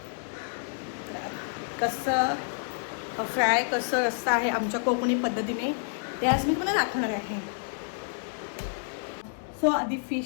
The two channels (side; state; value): right; silent; digital silence